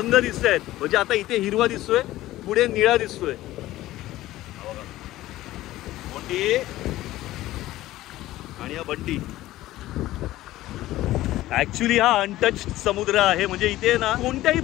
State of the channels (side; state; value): right; quieter; 15.9 dB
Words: दिसत आहेत। म्हणजे आता इथे हिरवा दिसतोय, पुढे निळा दिसतोय मोठी आणि हा बंटी। ऍक्च्युली हा अनटच्ड समुद्र आहे, म्हणजे इथे ना कोणत्याही